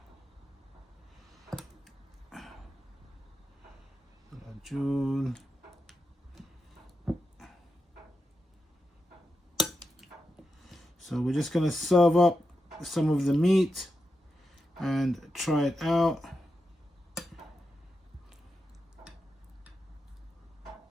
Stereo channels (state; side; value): normal; both; correlation 0.88